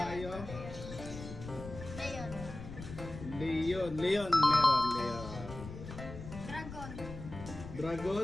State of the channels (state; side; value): noise; left; rumble, 11 dB below the sound